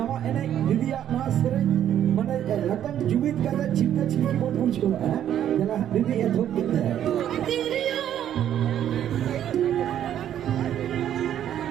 enek didiak mas sering. mana akan jubit kata cinta-cinta buat muncul. Jalan ini ya tuh kita. Tirio,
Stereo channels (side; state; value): left; quieter; 10.6 dB